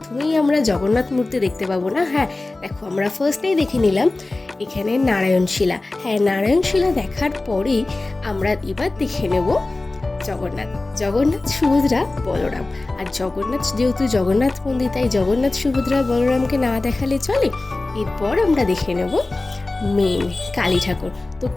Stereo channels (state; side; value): quieter; right; 3.1 dB